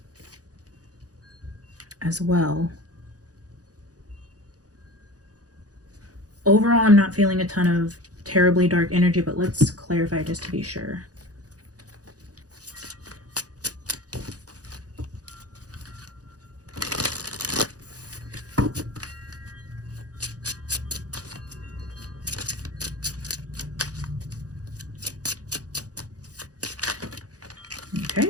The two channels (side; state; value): left; late; 0.67 ms